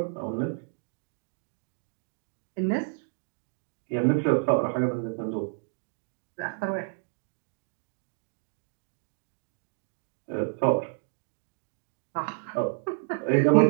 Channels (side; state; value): left; silent; digital silence